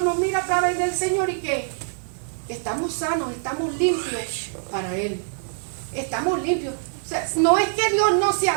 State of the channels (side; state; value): left; silent; digital silence